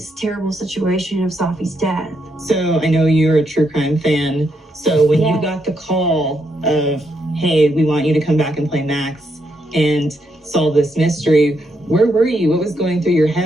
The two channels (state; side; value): normal; both; correlation 0.79